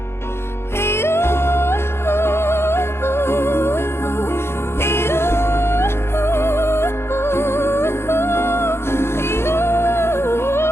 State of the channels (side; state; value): right; late; 0.12 ms